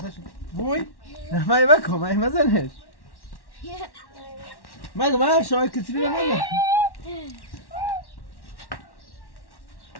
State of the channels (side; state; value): right; late; 1.1 ms